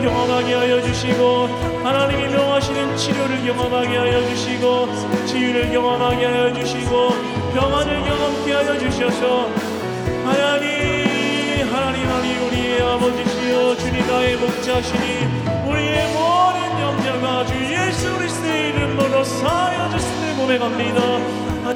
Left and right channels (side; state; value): both; identical; correlation 1.00